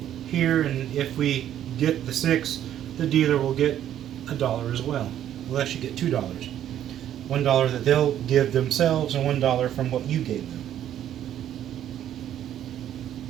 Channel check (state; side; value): quieter; left; 11.0 dB